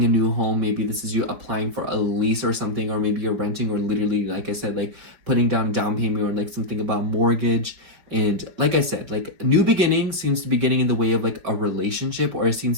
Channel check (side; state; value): left; late; 5.1 ms